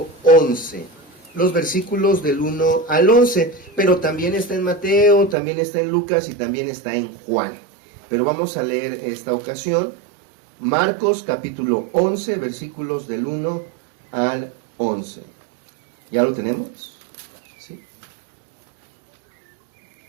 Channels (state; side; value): drops out; left; at 5.4 s